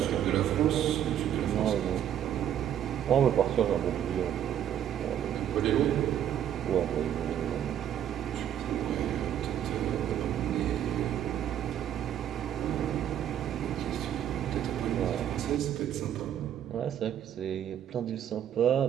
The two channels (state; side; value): quieter; left; 10.2 dB